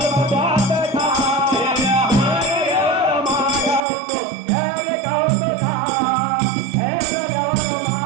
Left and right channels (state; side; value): drops out; left; at 3.8 s